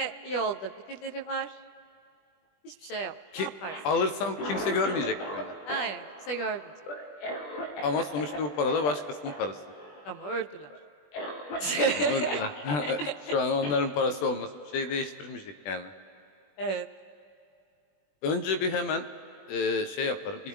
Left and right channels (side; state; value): right; late; 20 ms